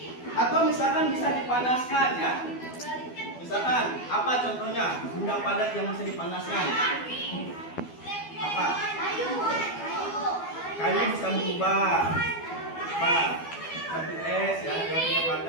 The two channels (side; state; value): right; late; 12 ms